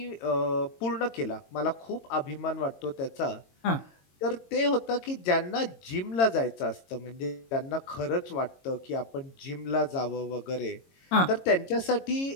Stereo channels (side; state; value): right; late; 22 ms